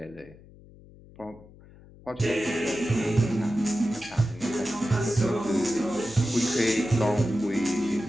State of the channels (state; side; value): noise; left; hum, 22 dB below the sound